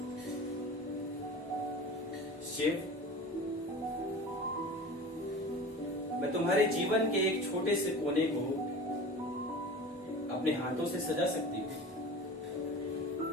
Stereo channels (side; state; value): both; normal; correlation 0.36